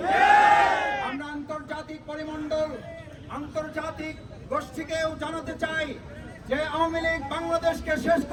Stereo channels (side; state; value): both; identical; correlation 1.00